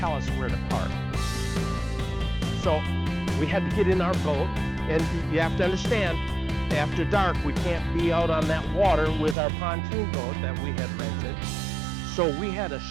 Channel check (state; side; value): drops out; left; at 9.3 s